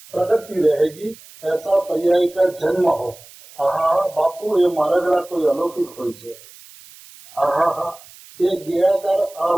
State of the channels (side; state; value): right; noise; hiss, 21 dB below the sound